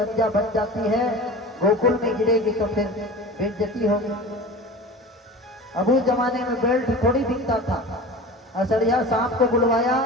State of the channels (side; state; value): both; normal; correlation 0.35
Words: बन जाती है, गोकुल में गिरेगी तो फिर बेइज्जती होगी। अब उस जमाने में बेल्ट थोड़ी दिखता था। असड़िया सांप को बुलवाया